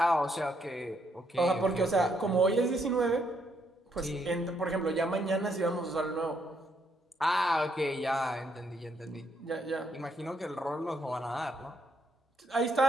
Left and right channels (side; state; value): both; normal; correlation 0.74